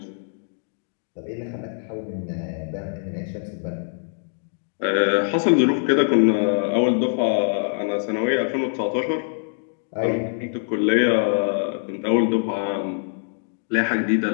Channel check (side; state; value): right; silent; digital silence